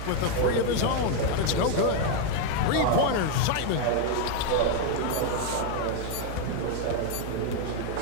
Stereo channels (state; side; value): different; both; correlation 0.01